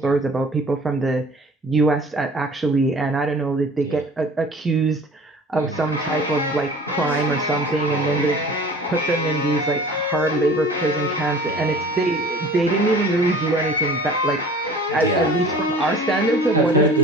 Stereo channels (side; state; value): both; normal; correlation 0.45